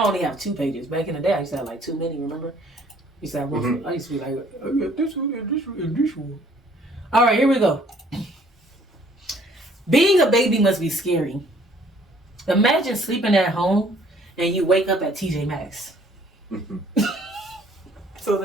I only have 2 pages. Back in the day, I used to have like too many, remember? I used to have one. I used to be like, I got this one and this one and this one. Alright, here we go. Being a baby must be scary. Imagine sleeping at home and you wake up at TJ Maxx. So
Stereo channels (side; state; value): both; normal; correlation 0.59